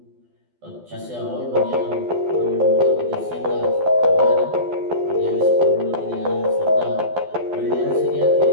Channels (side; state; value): left; late; 12 ms